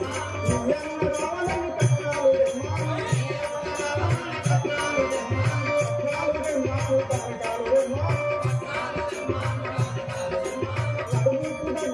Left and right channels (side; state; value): both; identical; correlation 1.00